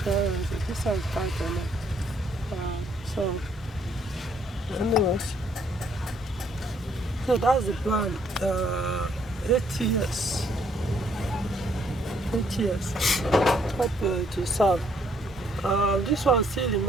clearance. This one's tight enough. So, anyways, so that's the plan. 8 years. 8 years. Hope to serve. This one still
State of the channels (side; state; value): both; normal; correlation 0.67